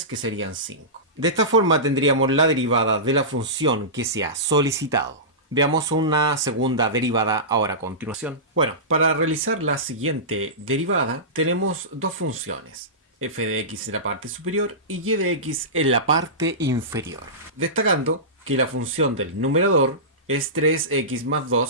que serían 5. De esta forma tendríamos la derivada de la función que se ha solicitado. Veamos una segunda derivada ahora a continuación. Bueno, para realizar la siguiente derivada tenemos dos funciones, f de x en la parte superior y y de x en la parte inferior. Destacando que la función del numerador es 3x más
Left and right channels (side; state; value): both; normal; correlation -0.19